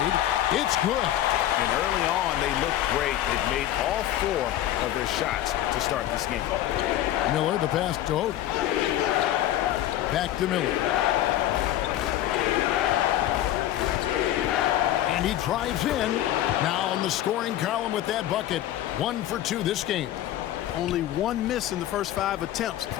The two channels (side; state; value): right; quieter; 12.9 dB